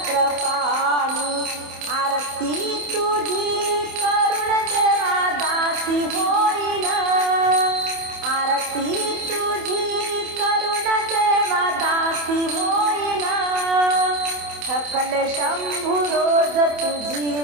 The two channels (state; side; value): late; left; 27 ms